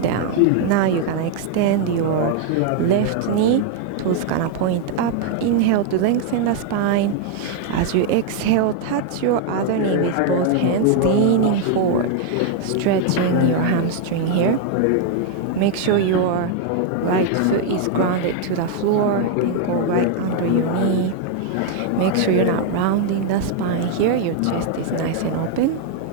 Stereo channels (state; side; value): different; both; correlation 0.00